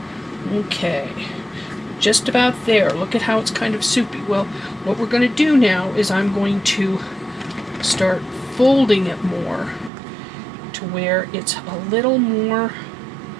Okay, just about there. Look at how it's kind of soupy. Well, what we're going to do now is I'm going to start folding it more to where it's a little more,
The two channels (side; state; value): left; drops out; at 9.9 s